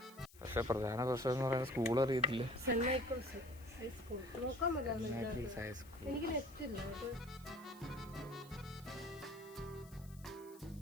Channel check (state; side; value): noise; left; hiss, 22 dB below the sound